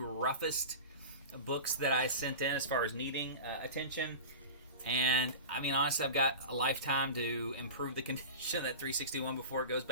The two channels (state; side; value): inverted; both; correlation -0.31